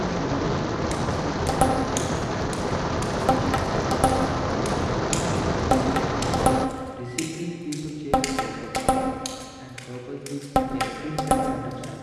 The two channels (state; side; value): identical; both; correlation 1.00